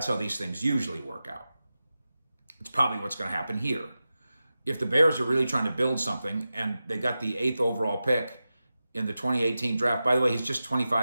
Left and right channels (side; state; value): both; inverted; correlation -0.93